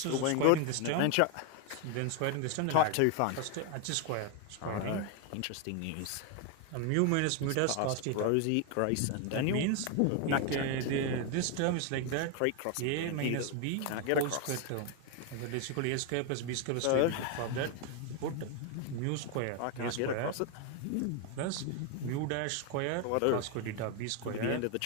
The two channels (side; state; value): both; different; correlation 0.01